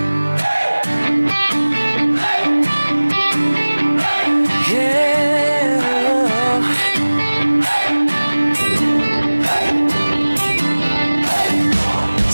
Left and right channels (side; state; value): both; inverted; correlation -1.00